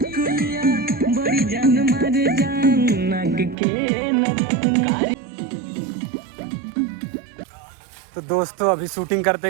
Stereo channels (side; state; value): left; drops out; at 3.6 s